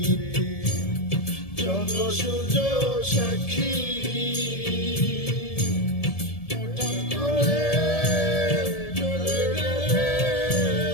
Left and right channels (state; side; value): late; right; 1.7 ms